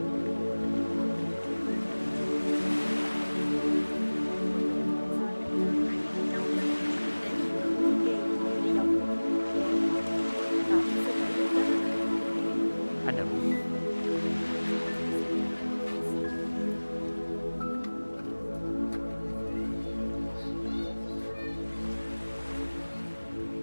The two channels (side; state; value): both; inverted; correlation -1.00